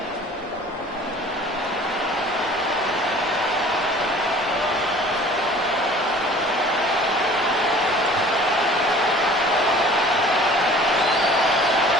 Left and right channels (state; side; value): normal; both; correlation 0.48